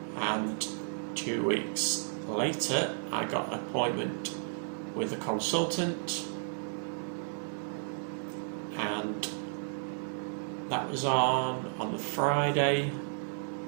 And 2 weeks later, I got an appointment with a consultant, and that was on the Friday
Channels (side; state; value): left; silent; 56 dB below the other